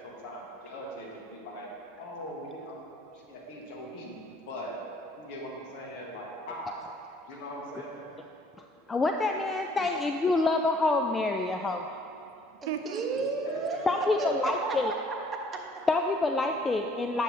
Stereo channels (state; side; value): normal; both; correlation 0.59